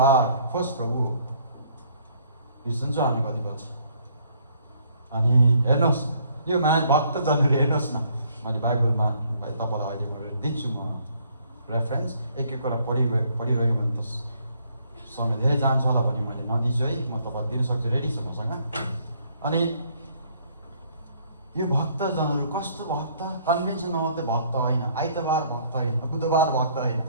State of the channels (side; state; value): both; inverted; correlation -0.65